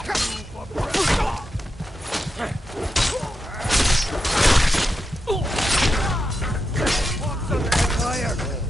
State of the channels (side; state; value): both; normal; correlation 0.87